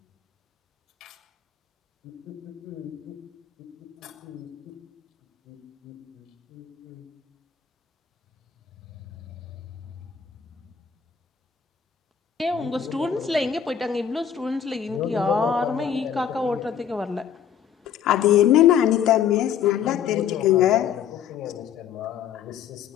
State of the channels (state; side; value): quieter; right; 8.4 dB